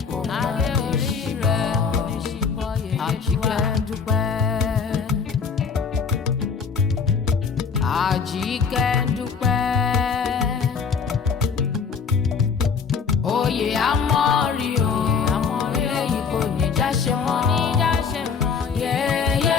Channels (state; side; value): quieter; right; 5.9 dB